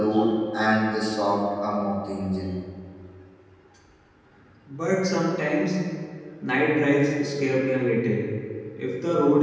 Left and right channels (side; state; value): both; identical; correlation 1.00